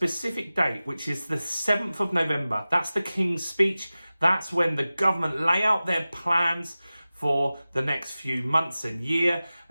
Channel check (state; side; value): inverted; both; correlation -0.96